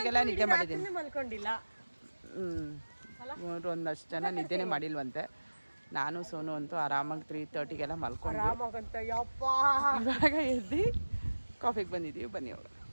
ನಿದ್ದೆ ಮಾಡಿದ್ದೀನಿ. ಮಲ್ಕೊಂಡಿಲ್ಲ. ಇವರು ಒಂದಷ್ಟು ಜನ ನಿದ್ದೆನೇ ಮಾಡಿಲ್ವಂತೆ. ನಾನು ಸೋನು ಅಂತೂ ಆರಾಮಾಗಿ 3:30ಗೆಲ್ಲ ಮಲ್ಕೊಂಡು ಇವಾಗ ಎದ್ದು ಕಾಫಿಗೆ ಬಂದಿದ್ದೀವಿ. ಬನ್ನಿ ಅವರು.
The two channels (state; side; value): inverted; both; correlation -1.00